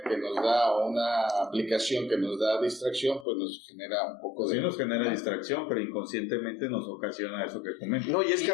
que nos da, o una aplicación que nos da distracción, pues nos genera un poco de... Sí, nos genera distracción, pero inconscientemente nos ocasiona eso que comentas. No, y es que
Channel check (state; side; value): drops out; right; at 3.2 s